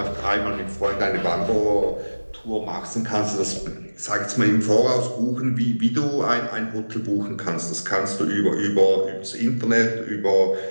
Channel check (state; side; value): inverted; both; correlation -1.00